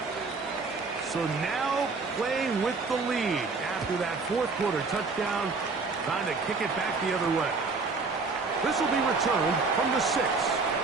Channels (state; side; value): quieter; left; 4.2 dB